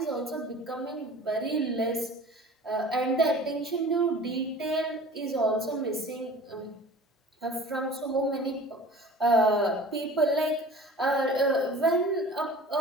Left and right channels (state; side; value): normal; both; correlation 0.43